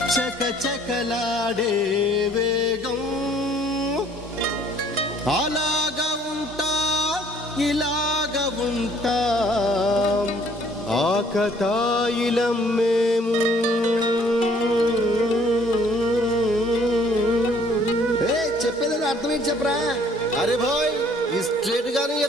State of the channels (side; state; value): both; normal; correlation 0.59